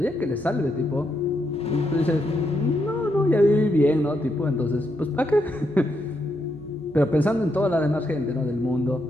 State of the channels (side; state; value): right; noise; hum, 24 dB below the sound